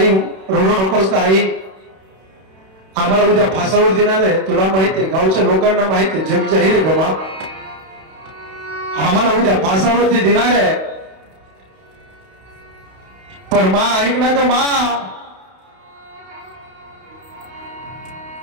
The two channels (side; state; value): left; late; 31 ms